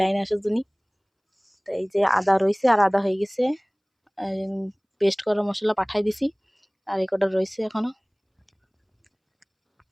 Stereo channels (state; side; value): identical; both; correlation 1.00